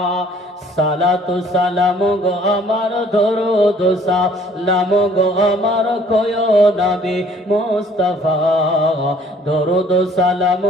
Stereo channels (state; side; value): normal; both; correlation 0.57